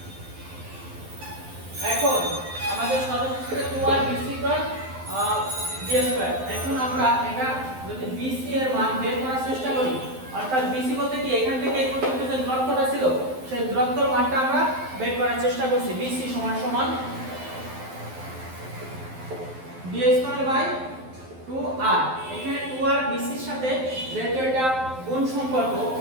এখন আমাদের সর্বশেষে 2r bc equal d square. এখন আমরা এটা যদি bc এর মান বের করার চেষ্টা করি, অর্থাৎ bc বলতে কি এখান থেকে এই পর্যন্ত যে দূরত্বটা ছিল সেই দূরত্বের মানটা আমরা বের করার চেষ্টা করছি। bc সমান সমান d স্কয়ার বাই 2r। এখানে 2r bc এর সাথে যেহেতু এটা গুণ সম্পর্ক,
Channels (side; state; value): left; late; 12 ms